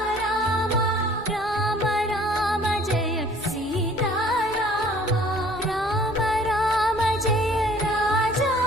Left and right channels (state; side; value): normal; both; correlation 0.54